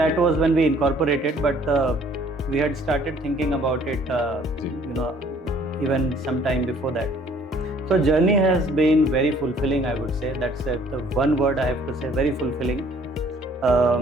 was when we incorporated, but we had started thinking about it, even some time before that. So journey has been very fulfilling, I would say. That's the one word I have to say, very fulfilling.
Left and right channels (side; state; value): both; normal; correlation 0.58